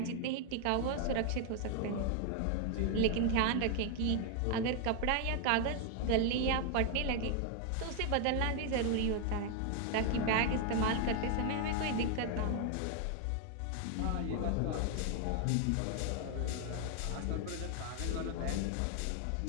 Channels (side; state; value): both; different; correlation 0.00